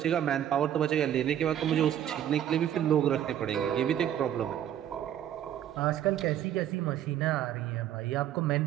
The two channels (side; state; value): left; quieter; 10.8 dB